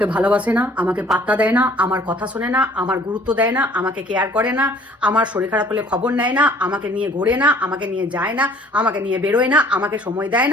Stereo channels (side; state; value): both; normal; correlation 0.56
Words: ভালোবাসে না, আমাকে পাত্তা দেয় না, আমার কথা শোনে না, আমার গুরুত্ব দেয় না, আমাকে কেয়ার করে না, আমার শরীর খারাপ হলে খবর নেয় না, আমাকে নিয়ে ঘোরে না, আমাকে নিয়ে যায় না, আমাকে নিয়ে বেরোয় না, আমাকে সময় দেয়